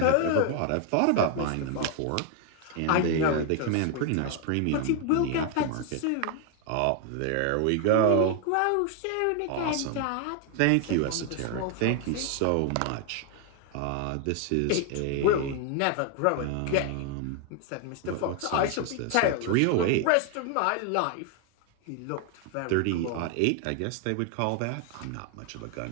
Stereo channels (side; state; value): both; different; correlation 0.00